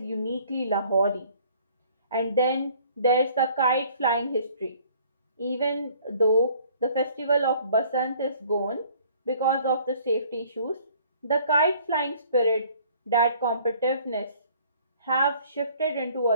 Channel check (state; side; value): inverted; both; correlation -0.57